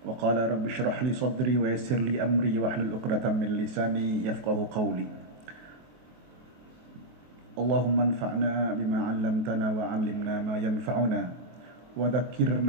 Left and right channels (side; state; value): left; late; 23 ms